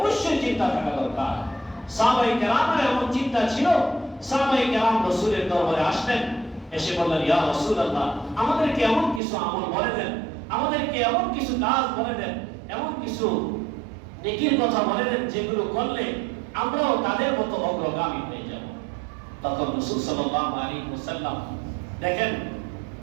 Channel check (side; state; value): left; drops out; at 9.2 s